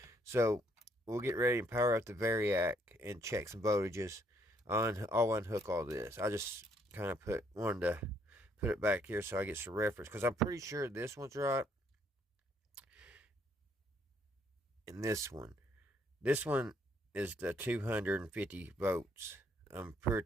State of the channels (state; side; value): normal; both; correlation 0.69